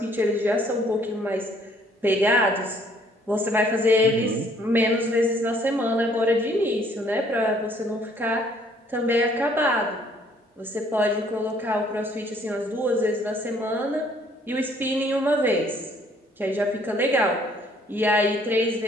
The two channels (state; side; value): normal; both; correlation 0.62